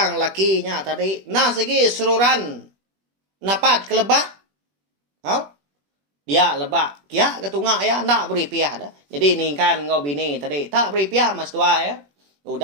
lakinya tadi nah segi sururan napat kelebak. Dia lebak. Kia ketunga ya nak beri piah dah. Jadi ningkan ngau bini tadi. Tak beri piah mas tuai ya.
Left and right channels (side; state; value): left; late; 21 ms